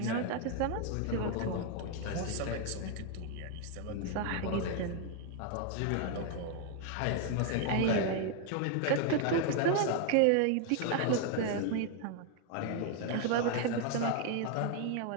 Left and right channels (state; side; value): different; both; correlation 0.00